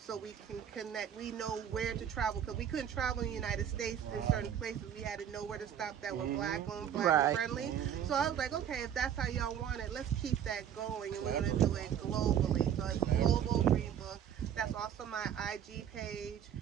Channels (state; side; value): quieter; left; 9.4 dB